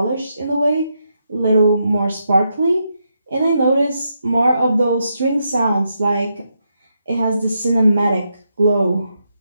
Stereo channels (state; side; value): inverted; both; correlation -0.82